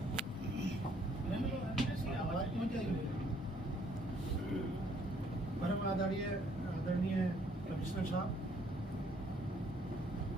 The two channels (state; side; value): normal; both; correlation 0.64